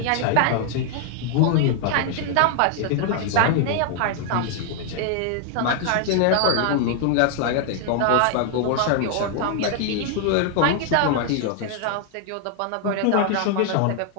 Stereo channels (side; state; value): both; different; correlation 0.00